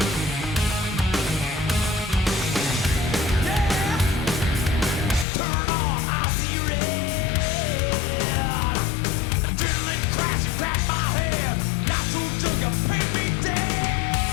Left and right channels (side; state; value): right; drops out; at 5.2 s